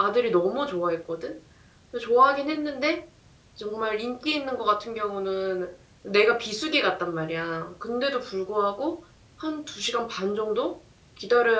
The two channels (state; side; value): identical; both; correlation 1.00